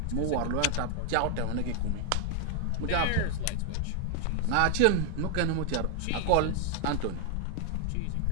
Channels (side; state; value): both; different; correlation 0.00